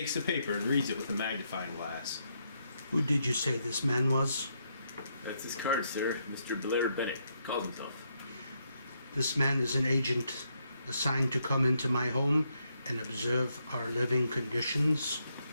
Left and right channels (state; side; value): inverted; both; correlation -0.77